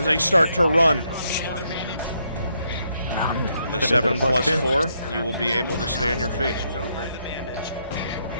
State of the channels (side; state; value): both; inverted; correlation -0.76